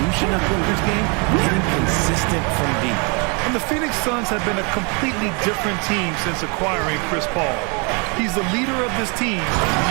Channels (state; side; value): quieter; left; 33.3 dB